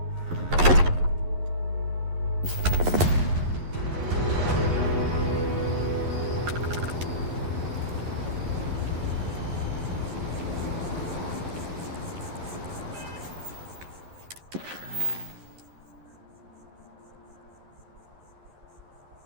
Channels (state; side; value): late; left; 11 ms